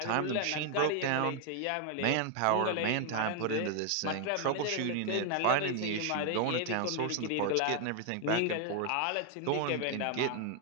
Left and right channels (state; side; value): different; both; correlation 0.01